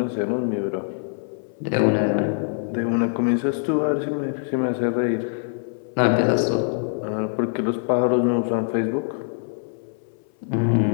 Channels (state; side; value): silent; right; 58 dB below the other